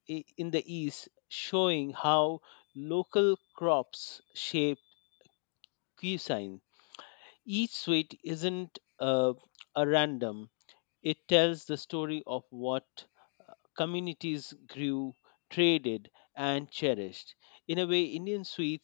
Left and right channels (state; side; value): silent; right; 54 dB below the other